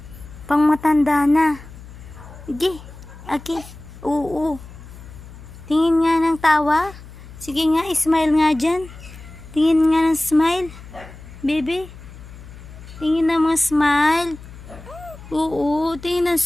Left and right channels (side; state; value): left; noise; hum, 17 dB below the sound